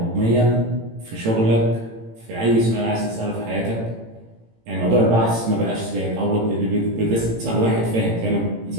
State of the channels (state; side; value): late; left; 18 ms